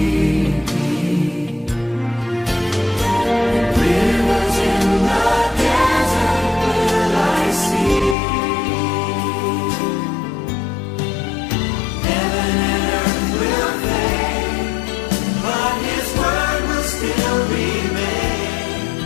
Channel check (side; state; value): right; drops out; at 8.2 s